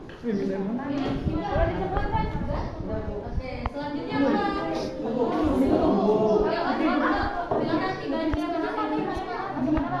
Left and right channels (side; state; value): both; identical; correlation 1.00